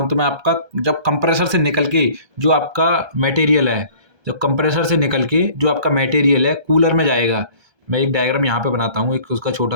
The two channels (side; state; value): left; late; 1.3 ms